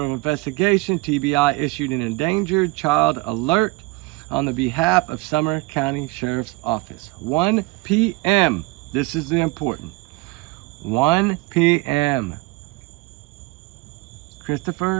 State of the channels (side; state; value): left; quieter; 22.1 dB